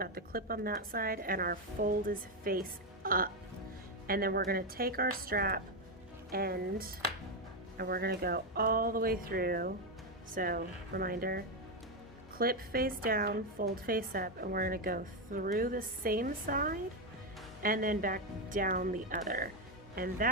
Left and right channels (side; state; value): both; normal; correlation 0.07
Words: the clip on that side and our fold is face up. And then we're going to take our strap end and we're going to go all the way through. So reminder, clip face down, fold face up, and we're going to go through the same side and then back down the other. And